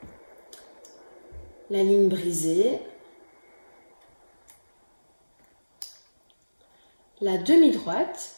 la ligne brisée, la demi-droite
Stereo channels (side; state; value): both; inverted; correlation -1.00